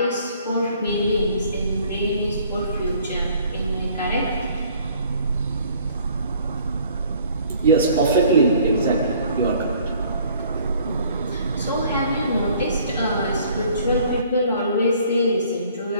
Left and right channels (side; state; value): both; inverted; correlation -0.57